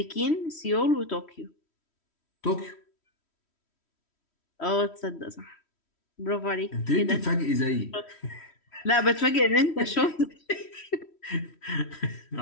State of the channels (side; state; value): right; late; 3.1 ms